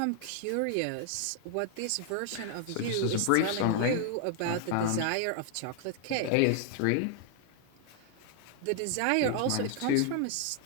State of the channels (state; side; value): different; both; correlation 0.00